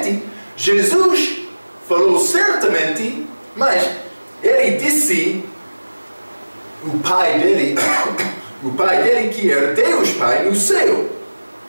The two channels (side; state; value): both; inverted; correlation -1.00